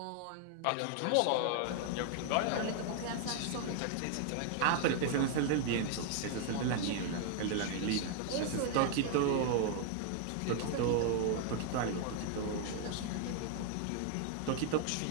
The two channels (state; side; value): different; both; correlation 0.00